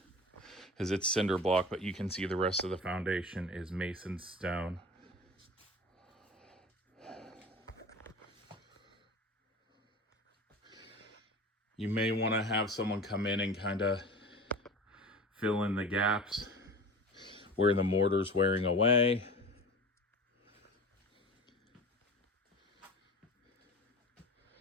because it's cinder block, but you can see the rest of the foundation is mason stone. You may want to have someone come in and kind of fill in the gaps where the mortar's wearing away.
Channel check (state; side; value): normal; both; correlation 0.36